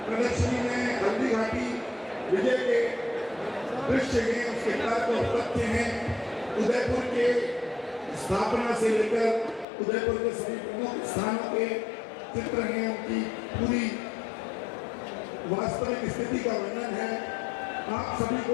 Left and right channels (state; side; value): drops out; right; at 9.7 s